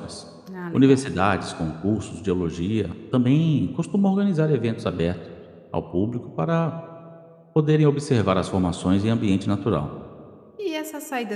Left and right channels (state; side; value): identical; both; correlation 1.00